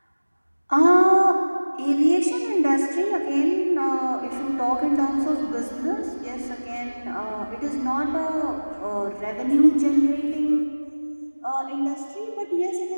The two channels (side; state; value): both; inverted; correlation -1.00